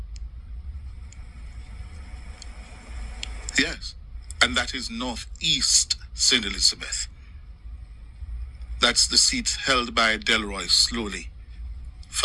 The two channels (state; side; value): identical; both; correlation 1.00